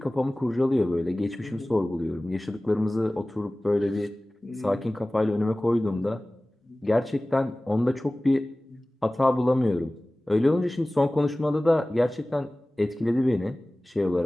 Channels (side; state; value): both; normal; correlation 0.98